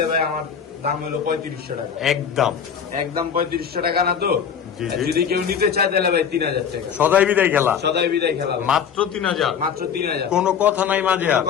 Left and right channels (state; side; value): quieter; right; 7.5 dB